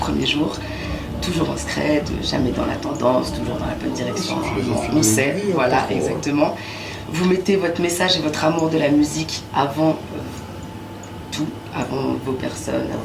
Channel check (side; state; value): both; identical; correlation 1.00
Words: jour. Toujours en scred, jamais dans la tendance, toujours dans la bonne direction. On sait, voilà, exactement. Vous mettez votre message et votre amour de la musique avant tout, avant vos personnes,